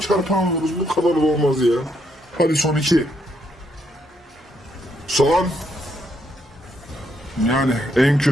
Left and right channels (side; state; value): both; normal; correlation 0.75